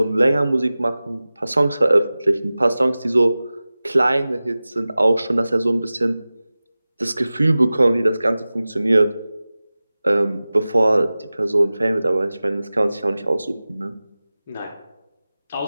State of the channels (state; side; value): inverted; both; correlation -0.97